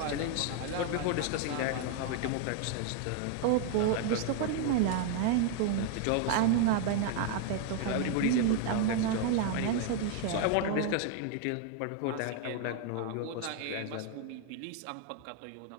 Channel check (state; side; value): different; both; correlation 0.00